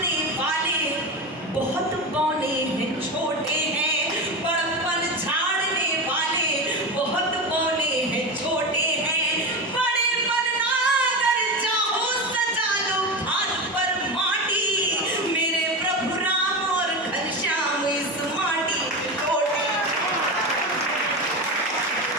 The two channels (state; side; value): normal; both; correlation 0.21